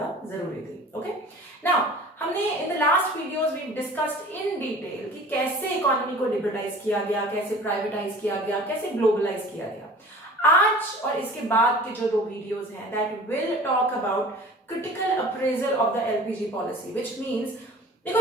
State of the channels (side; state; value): both; normal; correlation 0.43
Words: जरूरी थी. ओके, नाउ हमने in the last videos we discussed in detail कि कैसे इकोनॉमी को लिबरलाइज किया गया, कैसे प्राइवेटाइज किया गया, कैसे ग्लोबलाइज किया गया. आज और इसके बाद के जो 2 वीडियोस हैं that will talk about critical appraisal of the LPG policy, which means देखो